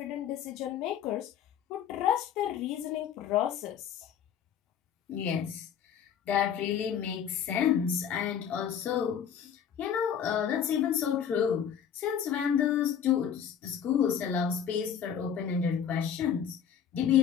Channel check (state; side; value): quieter; right; 8.4 dB